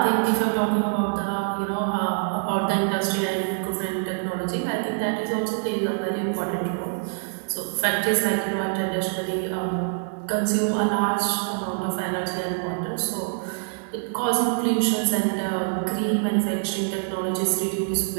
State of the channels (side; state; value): left; silent; digital silence